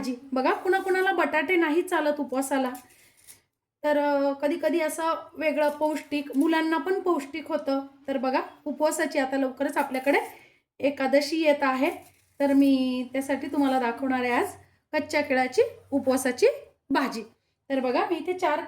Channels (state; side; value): identical; both; correlation 1.00